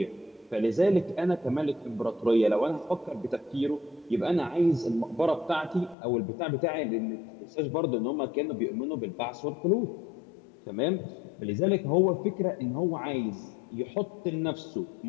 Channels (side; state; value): right; drops out; at 6.0 s